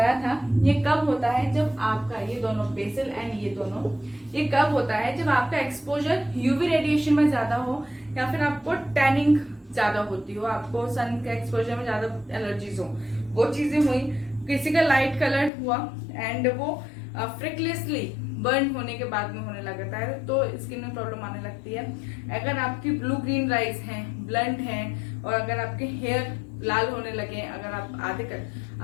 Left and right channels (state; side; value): drops out; right; at 15.5 s